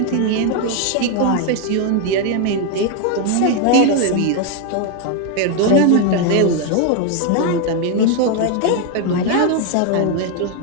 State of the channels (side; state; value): both; different; correlation 0.01